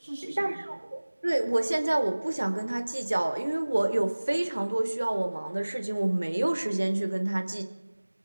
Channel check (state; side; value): inverted; both; correlation -1.00